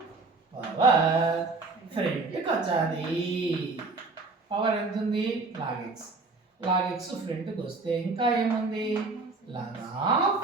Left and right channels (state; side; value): quieter; left; 3.7 dB